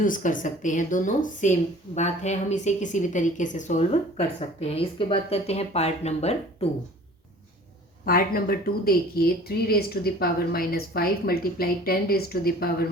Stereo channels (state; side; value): normal; both; correlation 0.47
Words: कर सकते हैं, दोनों सेम बात है, हम इसे किसी भी तरीके से सॉल्व कर सकते हैं। इसके बाद करते हैं पार्ट नंबर 2। पार्ट नंबर 2 देखिए, 3 raise to the power -5 multiply 10 raise to the power